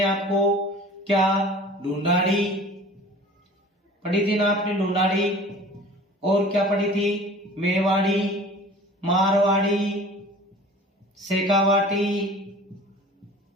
आपको। क्या? ढूंढाड़ी पढ़ी थी ना आपने, ढूंढाड़ी। और क्या पढ़ी थी? मेवाड़ी, मारवाड़ी, शेखावाटी।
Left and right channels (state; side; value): normal; both; correlation 0.44